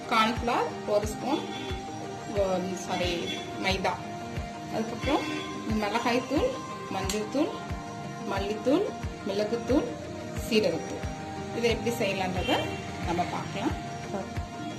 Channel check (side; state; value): both; identical; correlation 1.00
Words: கார்ன்ஃபிளவர், 1 ஸ்பூன் மைதா, அதுக்கப்புறம் மிளகாய் தூள், மஞ்சள் தூள், மல்லித்தூள், மிளகுத்தூள், சீரகத்தூள். இதை எப்படி செய்யலான்றத நம்ம பார்க்கலாம்.